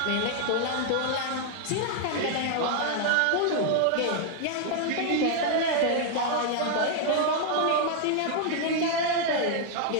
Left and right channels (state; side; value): different; both; correlation 0.00